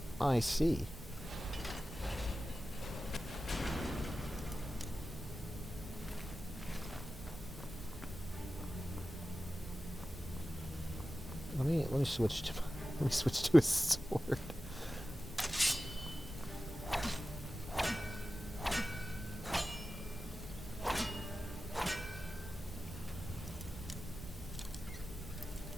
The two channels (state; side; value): normal; both; correlation 0.94